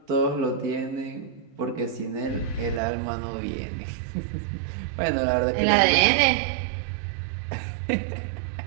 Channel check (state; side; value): drops out; left; at 2.8 s